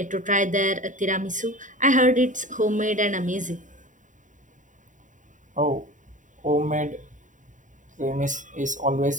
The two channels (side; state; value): left; late; 0.37 ms